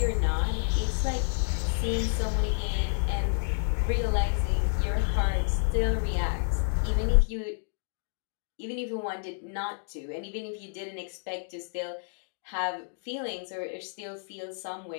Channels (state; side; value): silent; right; digital silence